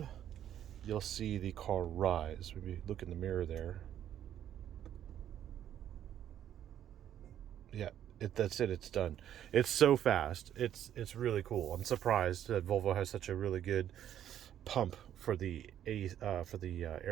You'll see the car rise. Maybe look in the mirror there. Yeah. That's it. It's done. It's so fast. It's really cool. I'm surprised that Volvo has such a really good pump for the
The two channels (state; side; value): quieter; left; 10.7 dB